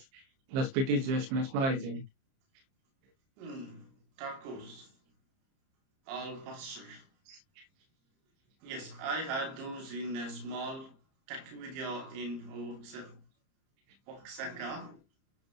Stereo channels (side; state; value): left; late; 30 ms